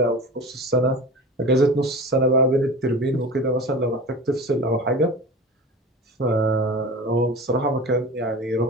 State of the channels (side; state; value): both; normal; correlation 0.34